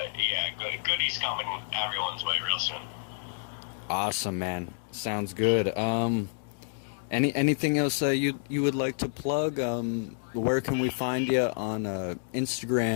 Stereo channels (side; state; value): right; silent; digital silence